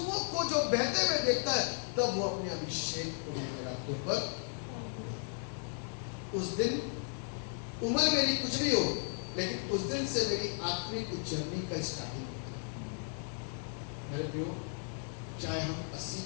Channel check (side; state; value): right; silent; 54 dB below the other